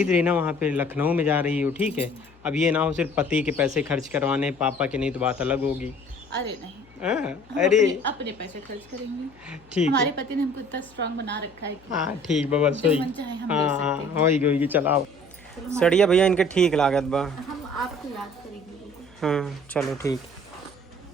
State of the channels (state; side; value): noise; left; hum, 27 dB below the sound